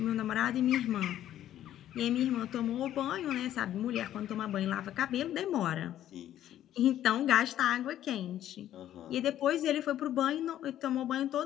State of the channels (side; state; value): right; quieter; 11.9 dB